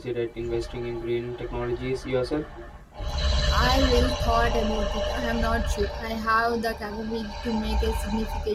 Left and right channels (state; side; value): identical; both; correlation 1.00